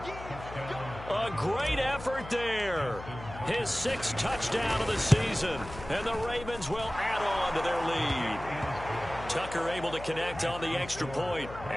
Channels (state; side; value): noise; left; hum, 13 dB below the sound